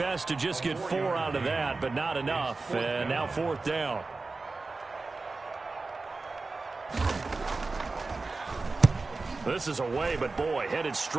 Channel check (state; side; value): quieter; left; 3.7 dB